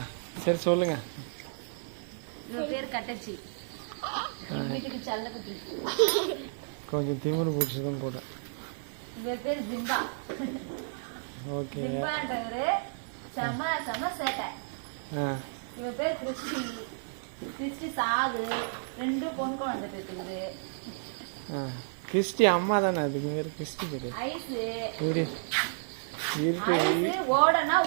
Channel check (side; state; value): left; silent; 57 dB below the other